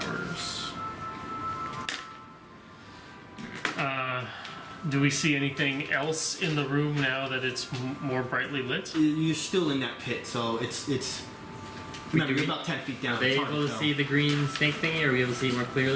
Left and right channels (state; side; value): identical; both; correlation 1.00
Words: Do we see anything else in the room now that it's more brightly lit? You're still in that pit, so it's. Remember, you're about 10 feet down. Are they It's hard able to tell. see the green snake thingy? Are we able to see it more